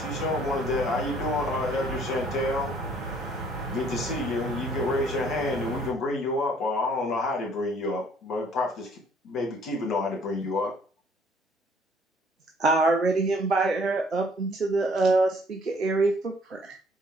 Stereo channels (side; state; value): both; normal; correlation 0.59